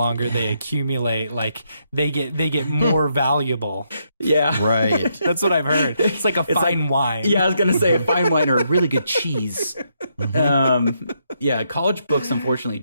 they accumulate, like they get more valuable. Yeah. Right. That's what I've heard. It's like a fine wine. Yeah, I was going to say a fine wine or a really good cheese. College books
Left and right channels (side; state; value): both; inverted; correlation -0.77